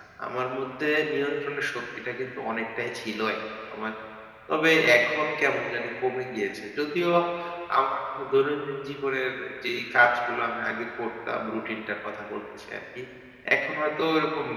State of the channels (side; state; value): both; identical; correlation 1.00